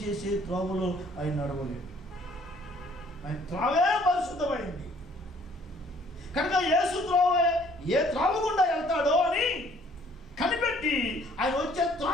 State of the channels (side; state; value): both; normal; correlation 0.60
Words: చేసే త్రోవలో ఆయన నడవలేడు. ఆయన త్రోవే పరిశుద్ధమైంది కనుక యేసు త్రోవ ఏ త్రోవ గుండా వెళ్తాడో అని కనిపెట్టి ఆయన వచ్చే